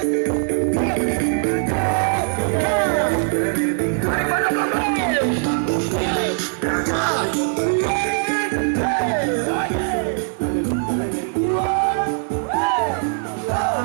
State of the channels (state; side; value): silent; left; 65 dB below the other